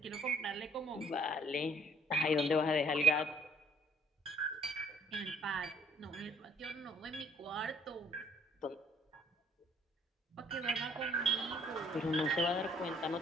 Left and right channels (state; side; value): normal; both; correlation 0.61